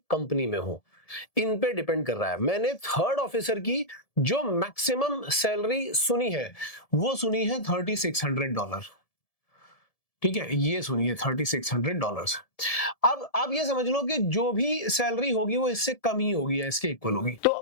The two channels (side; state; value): right; late; 1.7 ms